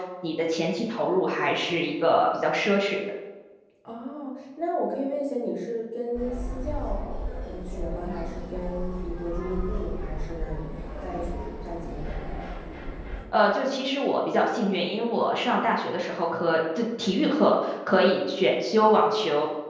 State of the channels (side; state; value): both; identical; correlation 1.00